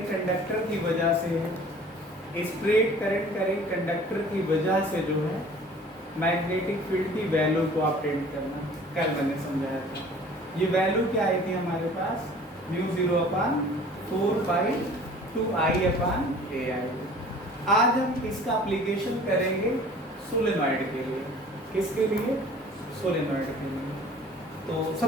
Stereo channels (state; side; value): normal; both; correlation 0.48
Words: कंडक्टर की वजह से है, स्ट्रेट करंट कैरिंग कंडक्टर की वजह से जो है मैग्नेटिक फील्ड की वैल्यू को अपडेट करना, कल मैंने समझाया था। ये वैल्यू क्या आई थी हमारे पास? Mu 0/4/2I/AI। आज हम इसका एप्लीकेशन करेंगे सोलेनॉइड के लिए। किसके लिए? सोलेनॉइड के लिए। तो